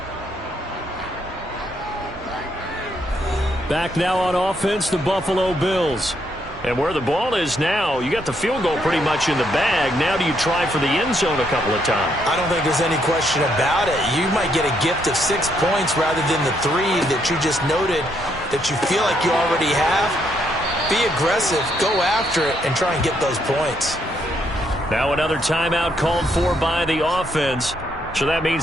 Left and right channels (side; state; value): both; normal; correlation 0.74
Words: Back now on offense, the Buffalo Bills. And where the ball is now, you got the field goal pretty much in the bag. Now do you try for the end zone a couple of times? I don't think there's any question about it. You might get a gift of 6 points rather than the 3 that you just noted that you feel like you already have. Be aggressive, go after it, and try and get those points. Now another timeout called for by the offense. So that